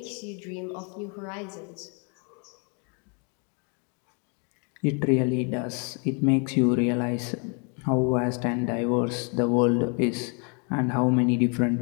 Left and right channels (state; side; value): quieter; right; 36.8 dB